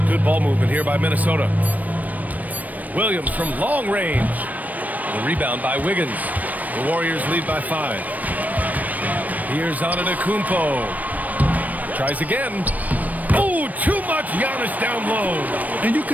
Good ball movement here by Minnesota. Williams from long range. The rebound by Wiggins. The Warriors lead by 5. Here's Antetokounmpo. Tries again. Oh, too much Giannis down low. And you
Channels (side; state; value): left; late; 0.077 ms